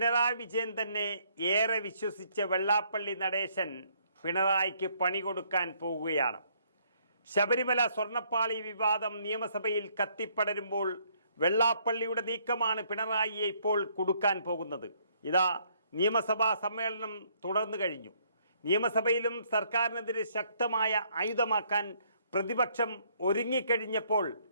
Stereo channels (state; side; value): inverted; both; correlation -0.67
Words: വിജയൻ തന്നെ ഏറെ വിശ്വസിച്ച വെള്ളാപ്പള്ളി നടേശൻ പിണറായിക്ക് പണി കൊടുക്കാൻ പോവുകയാണ്. ശബരിമല സ്വർണ്ണപ്പാളി വിവാദം നിയമസഭയിൽ കത്തിപ്പടരുമ്പോൾ വെള്ളാപ്പള്ളിയുടെ നീക്കമാണ് പിണറായിയെ ഇപ്പോൾ കൊടുക്കാൻ പോകുന്നത്. ഇതാ നിയമസഭാ സമ്മേളനം തുടർന്നു കഴിഞ്ഞു. നിയമസഭയിലും സർക്കാരിനെതിരെ ശക്തമായ ആയുധമാക്കാൻ പ്രതിപക്ഷം ഒരുങ്ങിക്കഴിഞ്ഞപ്പോൾ